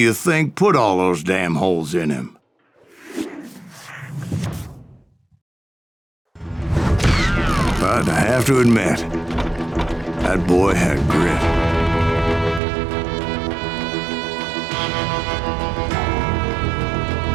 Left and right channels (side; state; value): left; drops out; at 12.6 s